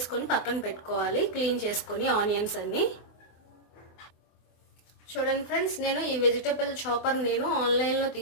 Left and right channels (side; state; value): right; late; 24 ms